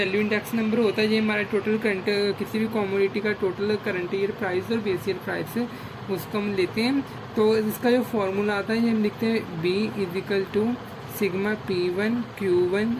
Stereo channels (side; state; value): both; identical; correlation 1.00